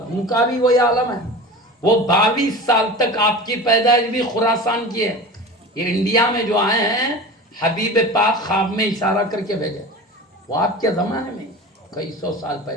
ان کا بھی وہی عالم ہے. وہ 22 سال تک آپ کی پیدائش بھی خراسان کی ہے. یہ انڈیا میں جو آئے ہیں حبیب پاک خواب میں اشارہ کر کے بھیجے, وہ آپ کے زمانے میں کئی سو سال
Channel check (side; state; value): both; normal; correlation 0.32